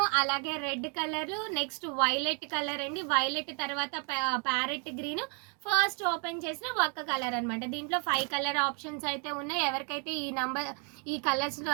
అలాగే red colour, next violet colour అండి. వైలెట్ తర్వాత ప్యారెట్ గ్రీన్, ఫస్ట్ ఓపెన్ చేసిన ఒక్క కలర్ అనమాట. దీంట్లో 5 కలర్ ఆప్షన్స్ అయితే ఉన్నాయి. ఎవరికైతే ఈ కలర్స్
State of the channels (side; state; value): left; quieter; 37.7 dB